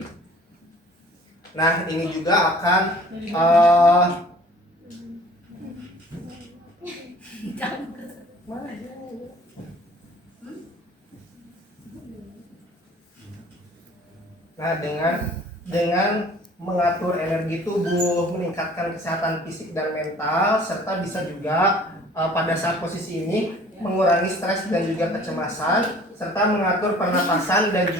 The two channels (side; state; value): both; normal; correlation 0.50